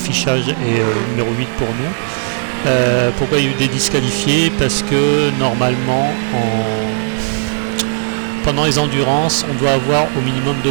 est numéro 8 pour nous. Pourquoi il y a eu des disqualifiés? Parce que normalement pendant les endurances, on doit avoir au minimum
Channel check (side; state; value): left; silent; digital silence